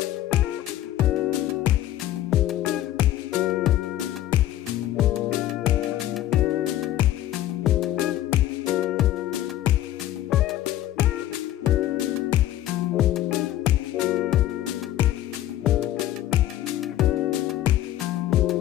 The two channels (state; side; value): quieter; right; 13.1 dB